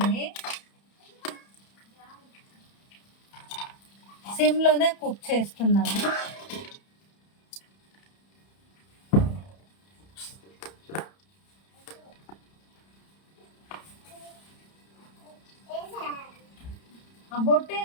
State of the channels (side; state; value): right; late; 31 ms